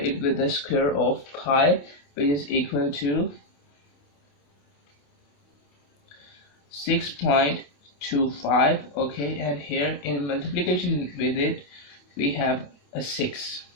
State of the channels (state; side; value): late; right; 28 ms